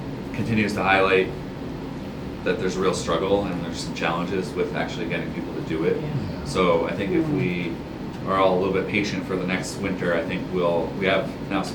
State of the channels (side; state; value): both; identical; correlation 1.00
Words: continues to highlight that there's a real struggle and there's some challenges with actually getting people to do it. Yeah. So I think if we are all a little bit patient for the next winter, I think we have now some